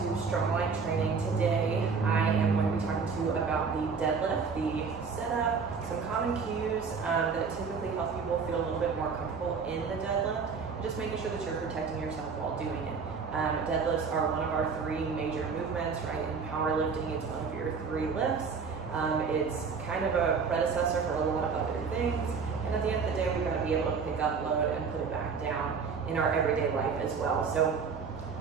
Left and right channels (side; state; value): left; quieter; 5.4 dB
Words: StrongLike Training. Today I am going to be talking to you about the deadlift, the setup, some common cues that typically help people feel a little bit more comfortable in the deadlift, and just making sure that you're protecting yourself while doing it. Deadlifts are one of our three major movements, right? In powerlifting, it's one of your three lifts. It's kind of a predecessor for a lot of other things, and at the end of the day, we've got to be able to pick up load and put it back down in our everyday life as well. So